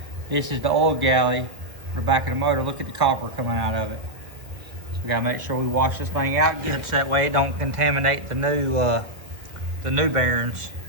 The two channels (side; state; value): left; late; 1.7 ms